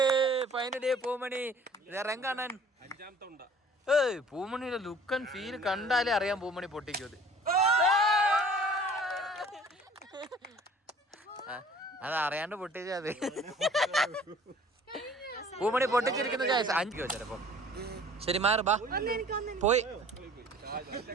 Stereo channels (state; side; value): normal; both; correlation 0.50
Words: Finally Poomani ഇറങ്ങാണൻ. പൂമണിയുടെ look and feel കണ്ടാലേ അറിയാം പൂമണി പൊട്ടിക്കും. അത് അറിയാണ്ട് പൊട്ടിച്ചത്. പൂമണി പൊട്ടിച്ചിരിക്കുന്ന 5 ചിലപ്പോ. ശരി, മാറ് ബാ. പോയി.